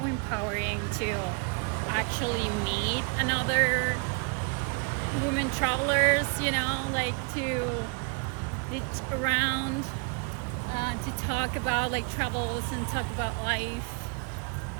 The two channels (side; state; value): left; quieter; 34.1 dB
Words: empowering to actually meet another women travelers, you know, like to be around, to talk about like travels and talk about life.